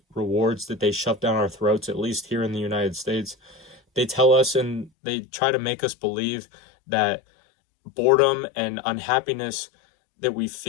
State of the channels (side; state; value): right; drops out; at 4.9 s